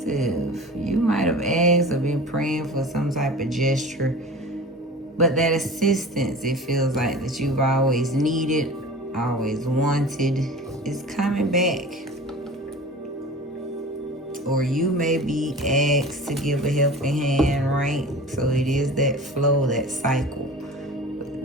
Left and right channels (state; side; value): normal; both; correlation 0.38